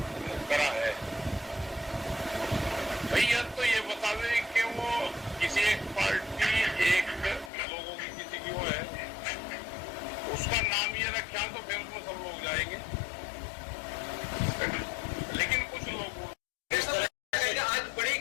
करा है। भैया तो ये बतावे कि वो किसी एक पार्टी, एक लोगों की किसी की वो है, उसका नाम ये रखा तो फिर उसमें सब लोग जाएंगे। लेकिन कुछ लोग आज बड़ी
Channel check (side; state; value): right; drops out; at 7.5 s